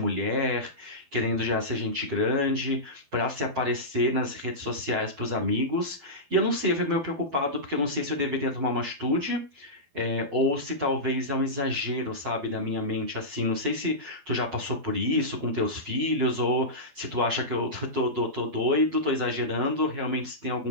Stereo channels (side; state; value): left; late; 12 ms